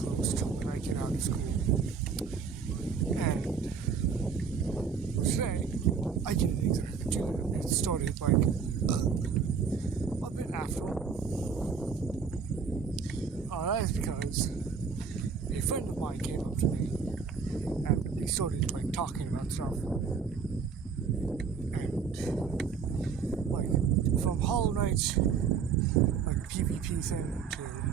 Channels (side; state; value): left; quieter; 6.0 dB